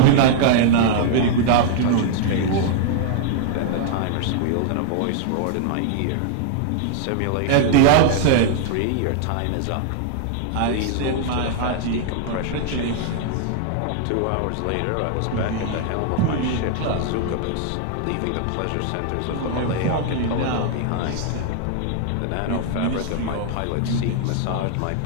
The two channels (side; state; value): both; different; correlation 0.00